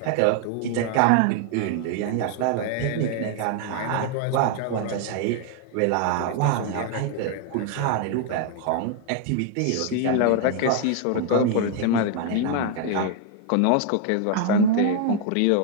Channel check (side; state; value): both; different; correlation 0.00